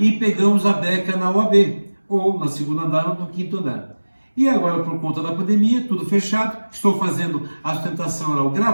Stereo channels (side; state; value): both; inverted; correlation -1.00